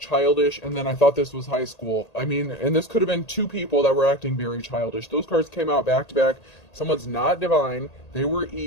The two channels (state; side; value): late; right; 1.8 ms